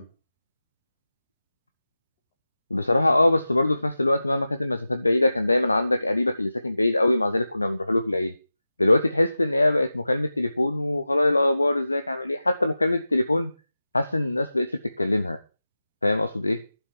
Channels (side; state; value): both; inverted; correlation -0.95